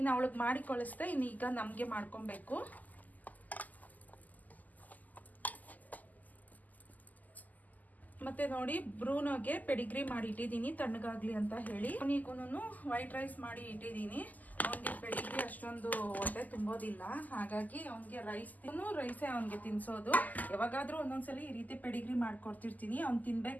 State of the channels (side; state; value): right; late; 0.081 ms